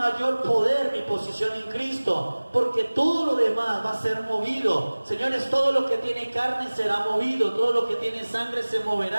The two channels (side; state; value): both; inverted; correlation -1.00